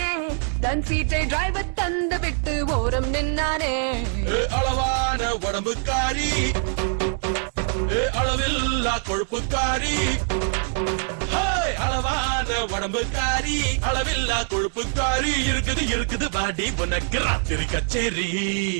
தன் சீட்டை டிரைவர் தந்து விட்டு ஓரம் நின்னானே. அளவான உடம்புக்காரி, அளவில்லா கொழுப்புக்காரி, அளவான உடம்புக்காரி, அளவில்லா கொழுப்புக்காரி, இருக்குது இருக்குது பாடி உனக்கு ராத்திரி கச்சேரி.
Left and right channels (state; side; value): silent; left; 63 dB below the other